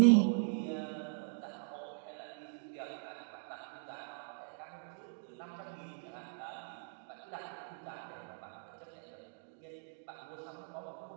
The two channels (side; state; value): left; silent; digital silence